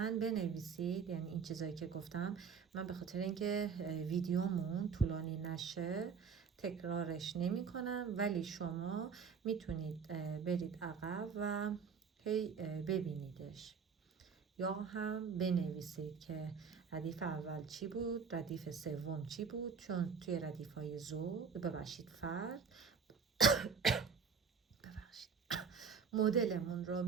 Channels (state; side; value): quieter; left; 6.0 dB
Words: بنویسید، یعنی این چیزایی که گفتم من به خاطر اینکه ویدیومون طولانی نشه تکرارش نمی کنم، ولی شما میتونید برید عقب و هی ببینیدش یا هم بنویسید که ردیف اول چی بود، ردیف سوم چی بود، چون توی ردیف های فرد مدلمون رو